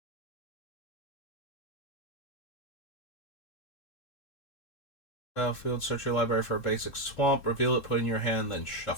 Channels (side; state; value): right; late; 3.7 ms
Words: Battlefield, search your library for a basic swamp, reveal it, put in your hand, then